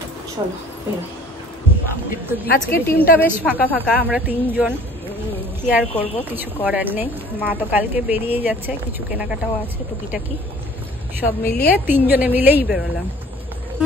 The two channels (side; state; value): both; normal; correlation 0.51